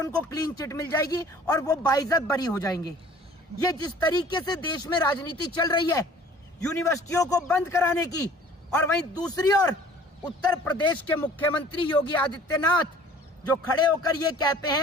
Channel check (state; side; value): normal; both; correlation 0.50